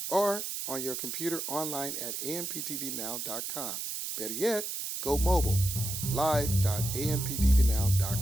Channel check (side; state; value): right; noise; hiss, 4 dB below the sound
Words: or on your computer online at amptvnow.com. Better yet, go mobile,